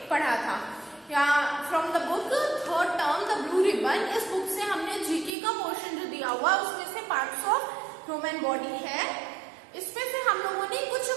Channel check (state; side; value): drops out; left; at 5.3 s